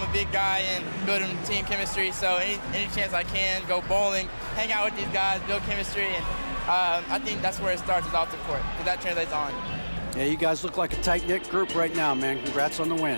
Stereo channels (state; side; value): inverted; both; correlation -1.00